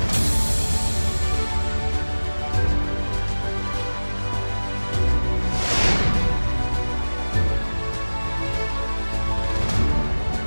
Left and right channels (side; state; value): both; inverted; correlation -1.00